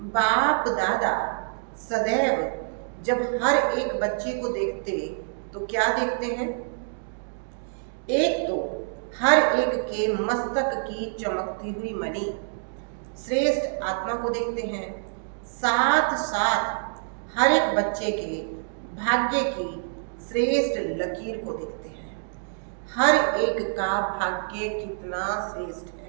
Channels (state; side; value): silent; left; digital silence